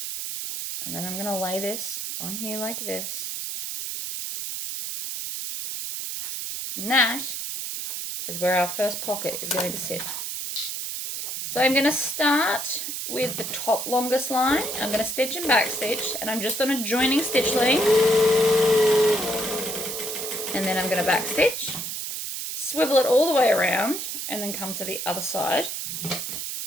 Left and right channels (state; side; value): noise; right; hiss, 5 dB below the sound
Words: And then I'm going to lay this on here like this. And that is where our first pocket is going to sit. So I'm going to start with the top longest line. I'm going to stitch and back stitch, and I'm just on a joining stitch length. And then I'm going to back stitch, swivel it all the way around, and then come to the other side.